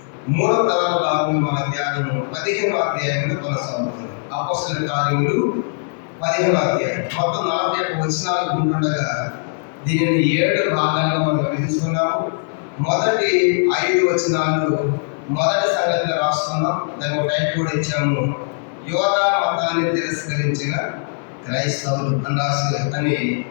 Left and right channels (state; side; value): silent; right; 62 dB below the other